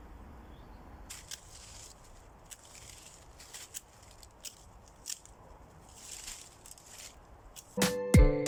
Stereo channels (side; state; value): both; identical; correlation 1.00